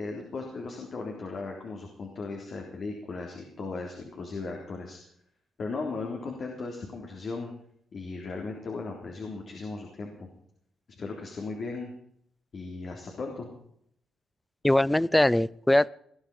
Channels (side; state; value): both; normal; correlation 0.96